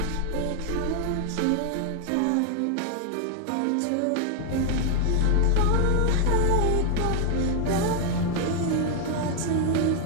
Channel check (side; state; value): both; different; correlation 0.00